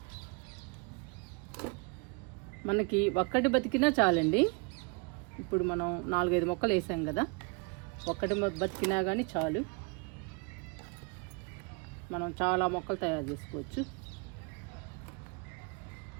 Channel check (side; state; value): left; quieter; 31.1 dB